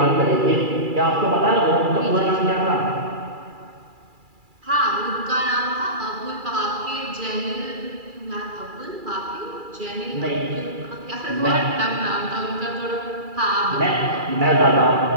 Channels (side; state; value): left; late; 2.3 ms